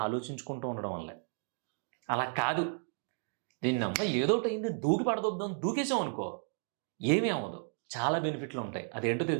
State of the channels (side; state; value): left; silent; 55 dB below the other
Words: ఆలోచించుకుంటూ ఉండడం వల్లే. అలా కాదు, దీన్నమ్మ ఏదోటి అయింది దూకి పడదొద్దాం దూకేసాం అనుకో, ఏమీ అవ్వదు, చాలా బెనిఫిట్లు ఉంటాయి. అదేంటో